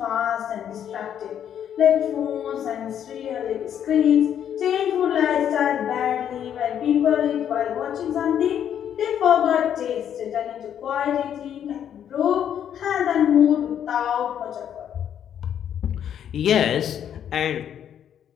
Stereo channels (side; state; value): right; quieter; 9.4 dB